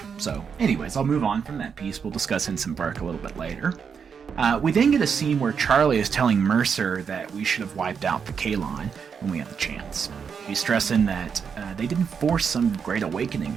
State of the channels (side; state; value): left; quieter; 6.5 dB